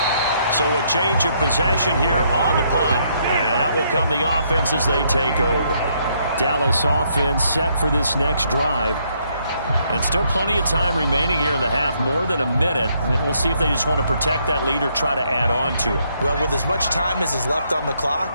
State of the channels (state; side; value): inverted; both; correlation -0.72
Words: So a change of possession here on the punt. And out will come the offense as they take over. Dallas offense set for this next drive. And still plenty of time remaining here in the half, more than a minute. And we'll see if they just want to protect that lead or try to add on to it. Well, with as much time as is left on the